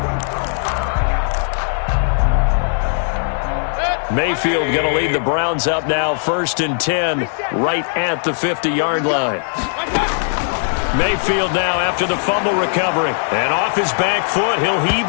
Mayfield going to lead the Browns up now, 1st and 10, right at the 50-yard line. Mayfield now after the fumble recovery. And off his back foot, he'll heave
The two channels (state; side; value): silent; right; digital silence